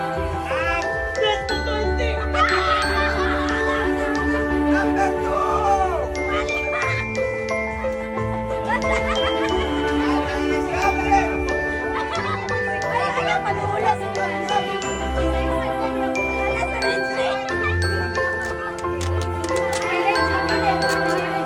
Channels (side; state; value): both; identical; correlation 1.00